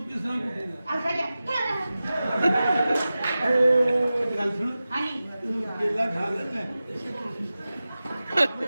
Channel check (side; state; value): both; inverted; correlation -0.95